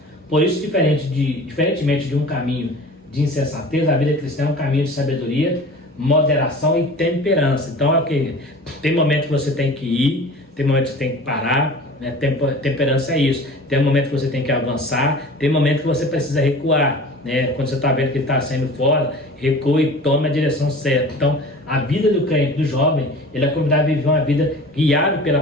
Por isso, diferentemente de um caminho de insensatez, a vida cristã é um caminho de sabedoria, moderação e temperança. Então, tem momento que você tem que ir, tem momento que você tem que parar, né? Temperança é isso. Tem momento que você tem que avançar, tem momento que você precisa recuar, né? Quando você está vendo que está saindo fora, recua e toma a direção certa. Então, a vida do crente, do jovem, ele é convidado a viver uma vida guiada pela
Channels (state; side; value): normal; both; correlation 0.41